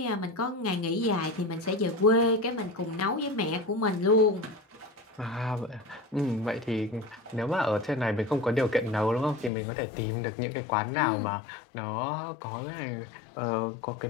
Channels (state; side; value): drops out; right; at 9.5 s